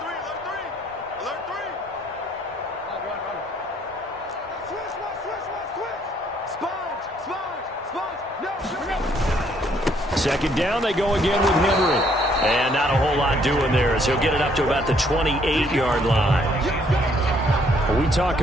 Second down, they go again with Henry. And not a whole lot doing there as he'll get it up to about the 28-yard line. We talk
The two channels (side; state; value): both; normal; correlation 0.66